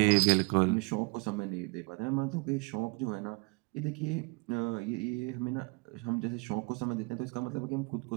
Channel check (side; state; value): left; quieter; 29.2 dB